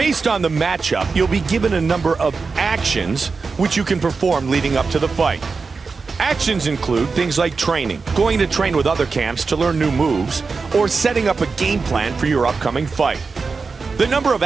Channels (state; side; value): quieter; left; 4.6 dB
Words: on the matchup, you'll be given a number of actions which you can perform leading up to the fight. Actions include things like training, going to train with other camps to learn new moves, or setting up a game plan for your upcoming fight. The number of